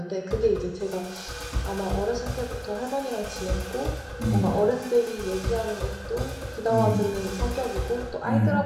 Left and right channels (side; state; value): both; identical; correlation 1.00